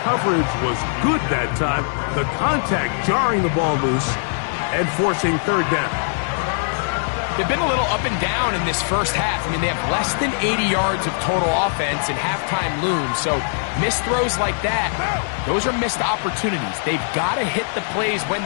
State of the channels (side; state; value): right; silent; digital silence